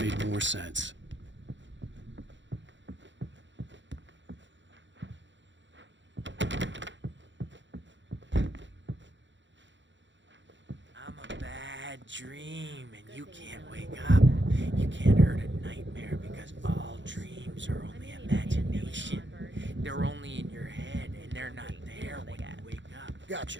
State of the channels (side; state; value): left; late; 0.54 ms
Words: more sense. I'm a bad dream, and you can't wake up. You can't hurt a nightmare because all dreams are only imagination. They're only in your head, and they're not there when you wake up. Gotcha.